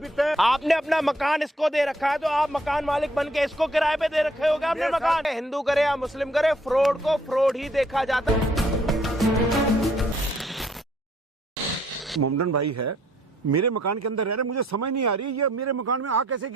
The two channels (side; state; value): both; normal; correlation 0.66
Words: है। आपने अपना मकान इसको दे रखा है, तो आप मकान मालिक बन के इसको किराए पे दे रखे होगे आपने मकान। हिंदू करे या मुस्लिम करे, फ्रॉड को फ्रॉड ही देखा जाता है। मोमडन भाई है, मेरे मकान के अंदर रह रहे, मुझे समझ नहीं आ रही ये मेरे मकान में आ कैसे